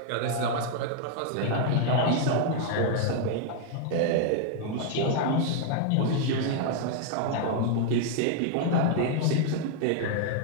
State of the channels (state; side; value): different; both; correlation 0.00